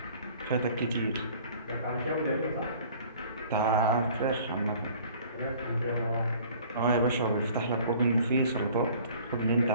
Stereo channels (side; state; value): both; inverted; correlation -0.51